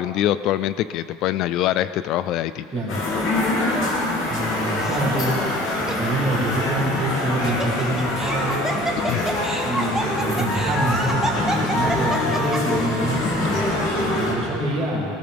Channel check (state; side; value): normal; both; correlation 0.49